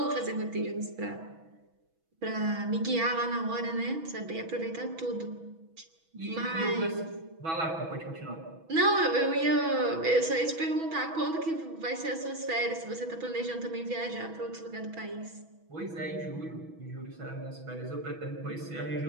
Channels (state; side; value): late; left; 6.1 ms